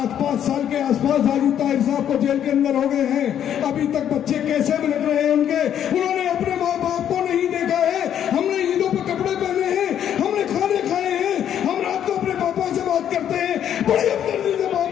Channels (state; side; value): quieter; right; 9.8 dB